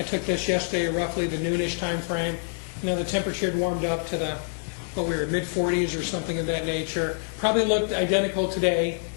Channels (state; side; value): silent; right; 61 dB below the other